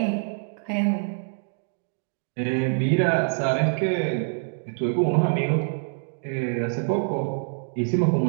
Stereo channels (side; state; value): left; silent; 61 dB below the other